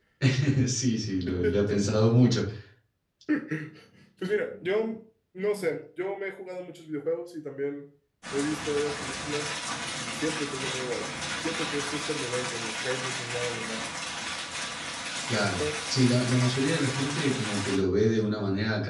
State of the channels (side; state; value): both; identical; correlation 1.00